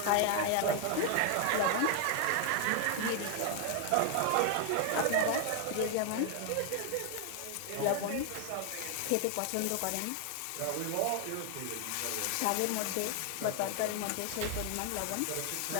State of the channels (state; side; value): different; both; correlation 0.00